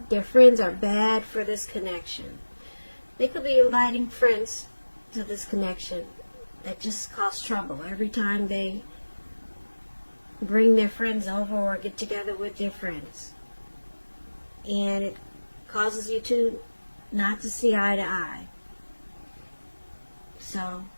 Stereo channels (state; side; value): inverted; both; correlation -1.00